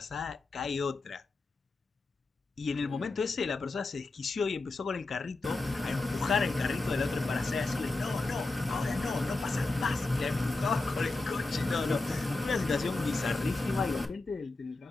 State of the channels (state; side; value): quieter; right; 3.3 dB